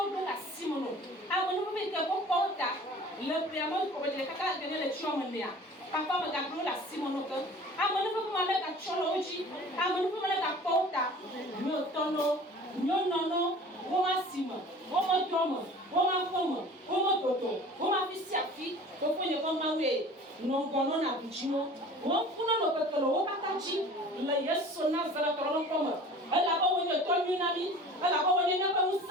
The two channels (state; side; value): normal; both; correlation 0.43